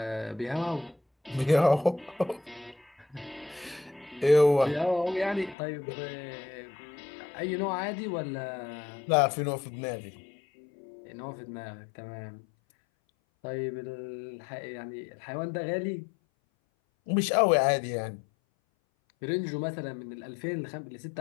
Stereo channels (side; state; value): right; drops out; at 5.6 s